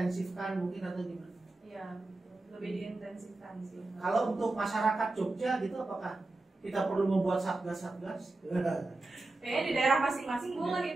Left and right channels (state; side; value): quieter; left; 3.0 dB